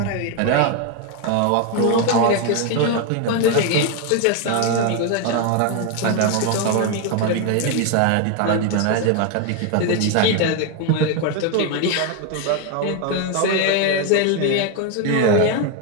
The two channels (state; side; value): different; both; correlation 0.01